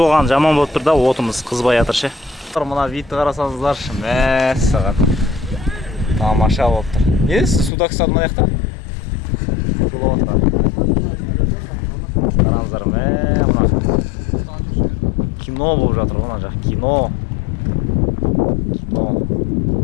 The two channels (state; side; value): drops out; right; at 7.7 s